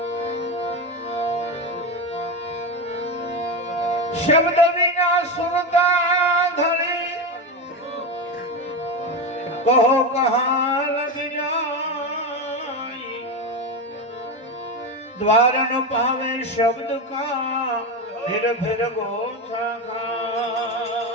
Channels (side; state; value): both; normal; correlation 0.16